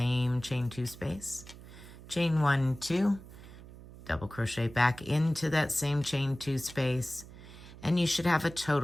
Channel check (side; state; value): right; noise; hum, 17 dB below the sound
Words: chain 2 space, chain 1, 2, double crochet back into that same chain 2 space, and you should have a